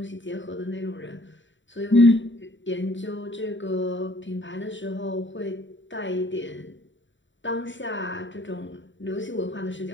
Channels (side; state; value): right; late; 0.54 ms